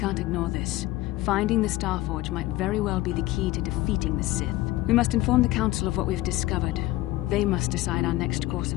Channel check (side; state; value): right; quieter; 17.2 dB